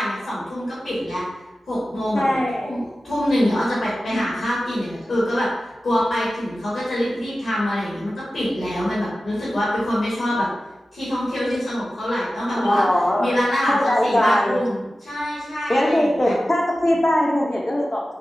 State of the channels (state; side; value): normal; both; correlation 0.95